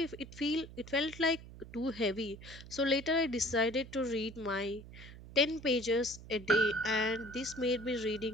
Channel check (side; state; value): right; noise; hum, 16 dB below the sound